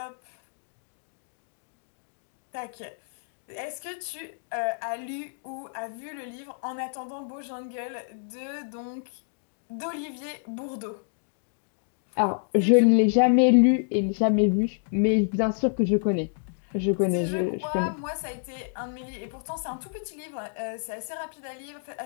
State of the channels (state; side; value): silent; right; digital silence